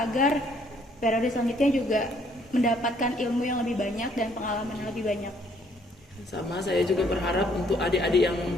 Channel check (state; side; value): normal; both; correlation 0.65